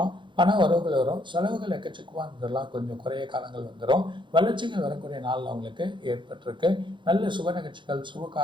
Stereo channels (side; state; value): left; late; 0.23 ms